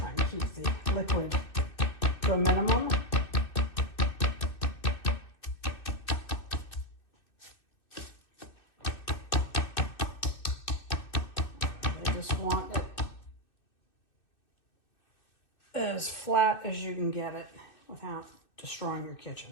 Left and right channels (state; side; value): late; right; 2.6 ms